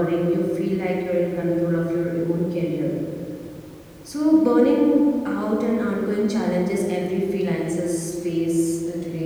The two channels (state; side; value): identical; both; correlation 1.00